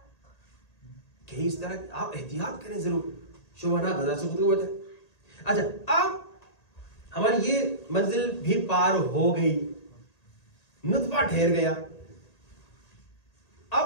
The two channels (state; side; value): late; right; 1.8 ms